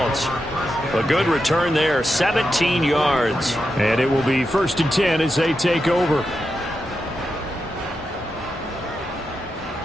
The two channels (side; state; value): both; normal; correlation 0.87